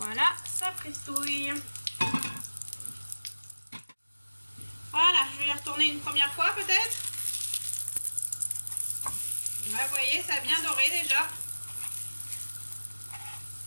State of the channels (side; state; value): both; inverted; correlation -1.00